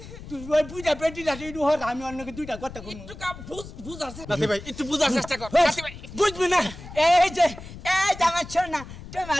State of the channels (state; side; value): noise; left; rumble, 14 dB below the sound